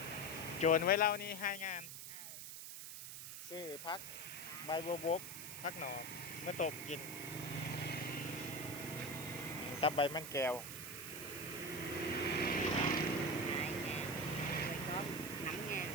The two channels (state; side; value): noise; right; hiss, 8 dB below the sound